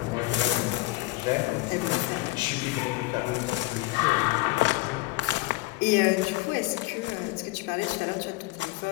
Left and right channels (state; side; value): quieter; right; 20.4 dB